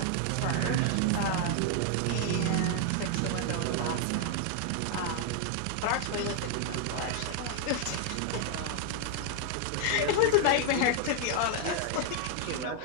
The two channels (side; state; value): both; different; correlation 0.00